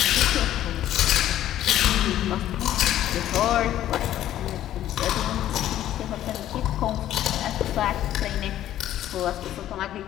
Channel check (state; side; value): quieter; right; 12.4 dB